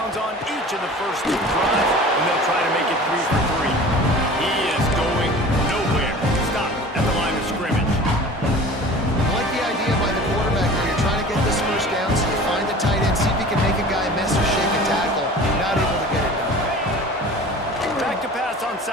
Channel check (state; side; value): normal; both; correlation 0.41